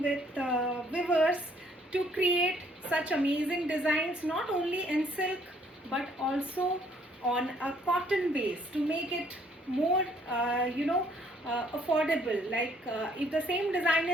with weavers to create such amazing designs, not only in silk but also on a cotton base to make it more affordable. Like if the same design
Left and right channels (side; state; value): both; normal; correlation 0.64